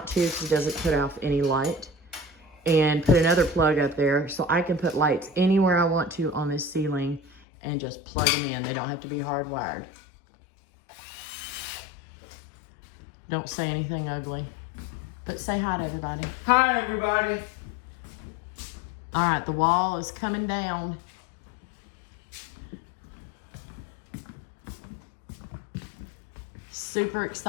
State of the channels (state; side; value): drops out; right; at 7.4 s